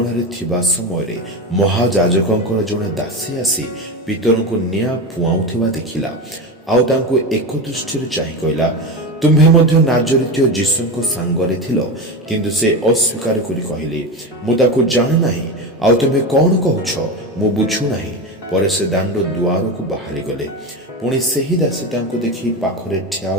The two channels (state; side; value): normal; both; correlation 0.20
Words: ଥିବା ସମୟରେ ମହାଯାଜକଙ୍କର ଜଣେ ଦାସୀ ଆସି ପିତରଙ୍କୁ ନିଆଁ ପୁଆଉଥିବା ଦେଖିଲା। ଆଉ ତାଙ୍କୁ ଏକ ଦୃଷ୍ଟିରେ ଚାହିଁ କହିଲା, ତୁମ୍ଭେ ମଧ୍ୟ ନାଜରିତୀୟ ଯୀଶୁଙ୍କ ସାଙ୍ଗରେ ଥିଲ। କିନ୍ତୁ ସେ ଅସ୍ୱୀକାର କରି କହିଲେ, ମୁଁ ତାକୁ ଜାଣେ ନାହିଁ। ଆଉ ତୁମ୍ଭେ କ'ଣ କହୁଛ? ମୁଁ ବୁଝୁନାହିଁ। ପରେ ସେ ଦାଣ୍ଡ ଦୁଆରକୁ ବାହାରିଗଲେ। ପୁଣି ସେହି ଦାସୀ ତାଙ୍କୁ ଦେଖି ପାଖରେ ଠିଆ